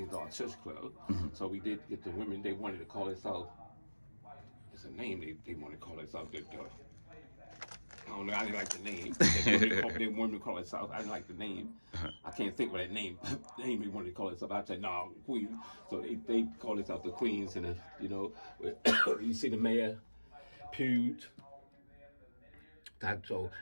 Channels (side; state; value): both; inverted; correlation -1.00